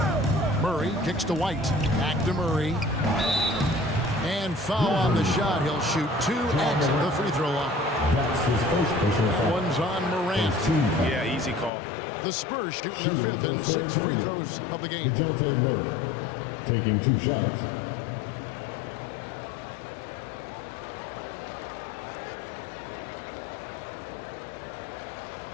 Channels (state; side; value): drops out; right; at 11.7 s